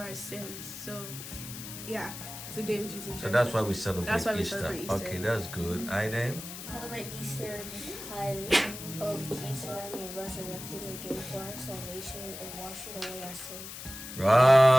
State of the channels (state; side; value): noise; left; hiss, 10 dB below the sound